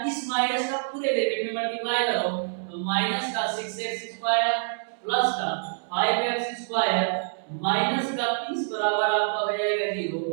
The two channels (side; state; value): left; silent; digital silence